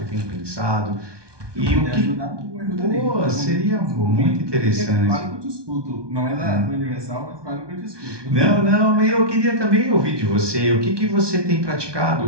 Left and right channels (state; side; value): late; left; 1.2 ms